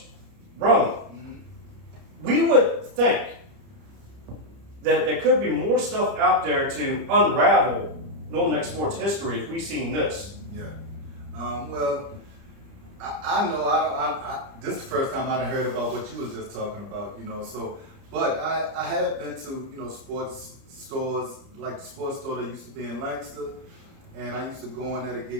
Roane, we would think that there could be more stuff out there to unravel Northern Neck sports history if we seen this. Yeah. Well, I know this is the first time I heard about what you was just talking about, so, but I have been to, sports stores, like the sports store that used to be in Lancaster, and I used to go in there to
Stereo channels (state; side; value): late; left; 30 ms